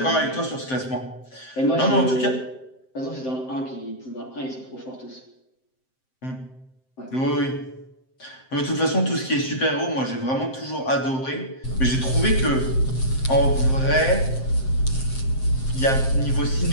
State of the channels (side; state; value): right; late; 7.7 ms